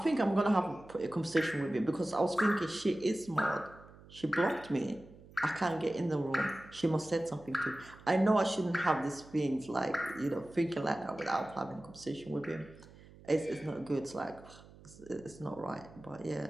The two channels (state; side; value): noise; right; hum, 21 dB below the sound